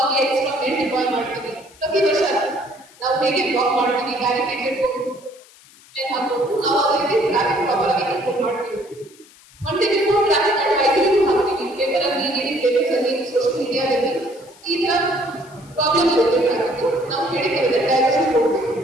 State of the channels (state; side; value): noise; left; hiss, 25 dB below the sound